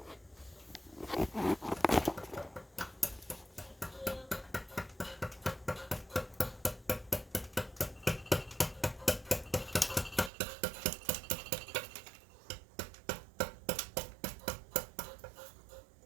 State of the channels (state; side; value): drops out; left; at 10.3 s